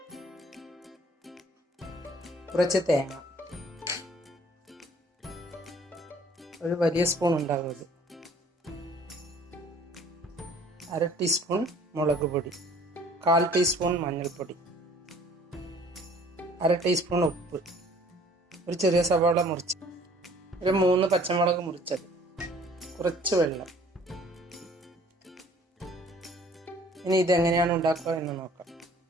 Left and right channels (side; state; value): both; normal; correlation 0.55